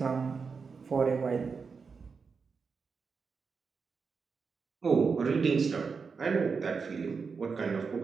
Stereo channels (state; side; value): quieter; left; 5.2 dB